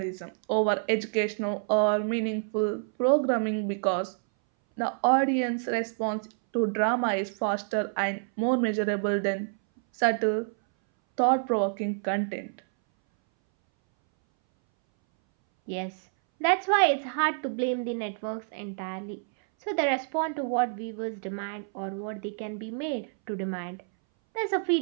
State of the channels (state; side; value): silent; left; 59 dB below the other